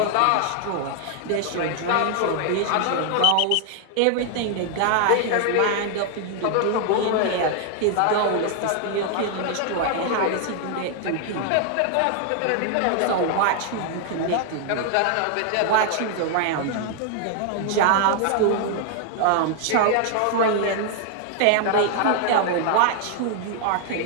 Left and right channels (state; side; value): different; both; correlation 0.00